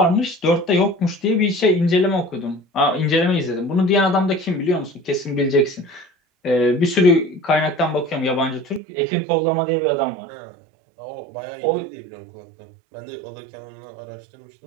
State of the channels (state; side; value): drops out; left; at 8.8 s